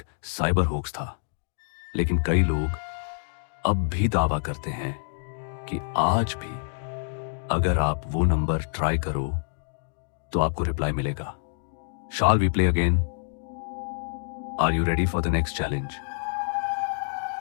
साइबर होक्स था, लेकिन कई लोग अब भी दावा करते हैं कि आज भी अगर आप वो नंबर ट्राई करो तो आपको रिप्लाई मिलेगा। Shall we play again? Are you ready for the next challenge?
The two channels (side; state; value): right; silent; digital silence